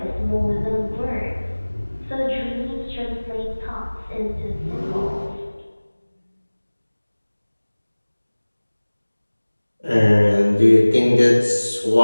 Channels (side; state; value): both; inverted; correlation -1.00